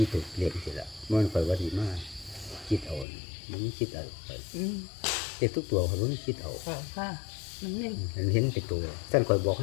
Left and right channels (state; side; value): drops out; right; at 3.1 s